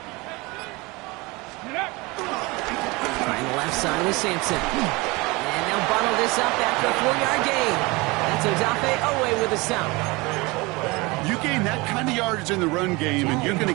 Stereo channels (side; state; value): left; quieter; 24.3 dB